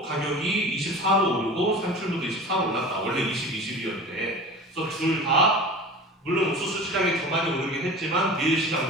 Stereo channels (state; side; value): normal; both; correlation 0.36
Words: 가격이 24로 오르고 산출물도 24로 올랐다. 원래 20이었는데 그래서 둘 다 물론 옥수수 시장이 더 많이 오르긴 했지만 밀